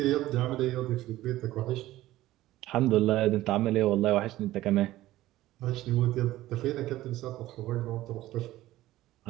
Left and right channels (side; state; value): left; quieter; 15.8 dB